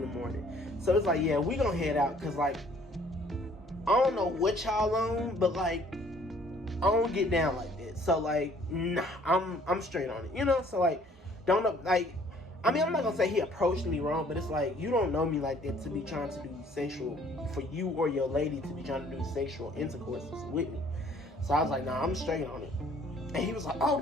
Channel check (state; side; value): normal; both; correlation 0.58